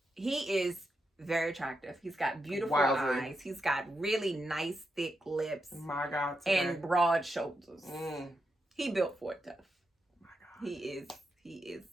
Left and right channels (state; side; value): normal; both; correlation 0.85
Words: he is very attractive. He's got beautiful eyes. He's got really nice, thick lips. My God. And broad shoulders. He built for it tough. My God. He is.